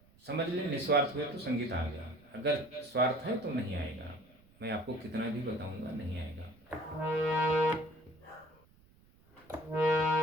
समझ लें, निस्वार्थ हुए तो संगीत आ गया, अगर स्वार्थ है तो नहीं आएगा। मैं आपको कितना भी बताऊंगा, नहीं आएगा।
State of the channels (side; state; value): right; noise; rumble, 29 dB below the sound